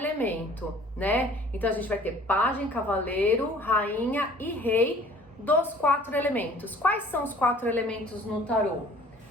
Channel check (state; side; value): normal; both; correlation 0.52